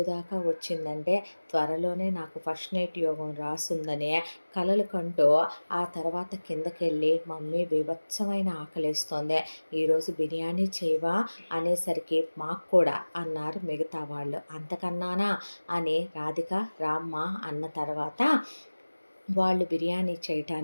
దాకా వచ్చిందంటే త్వరలోనే నాకు ఫస్ట్ నైట్ యోగం రాసుందనే కలలు కంటూ ఆ తర్వాత కిందకెళ్ళి మమ్మీ బీభత్సమైన ఆకలేస్తోంది, ఈరోజు బిర్యానీ చేయవా అనేసరికి మాకు కూడా అన్నారు మిగతా వాళ్ళు. అంతకన్నానా అని రాధిక రామ్మ అన్న తర్వాత వాళ్ళు బిర్యానీ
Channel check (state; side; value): inverted; both; correlation -1.00